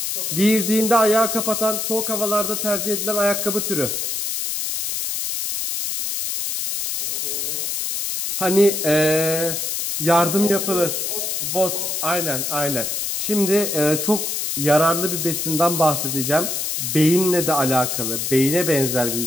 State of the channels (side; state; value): left; noise; hiss, 2 dB below the sound